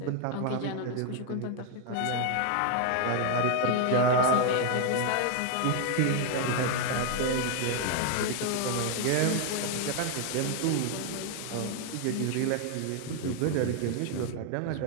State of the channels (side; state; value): both; different; correlation 0.00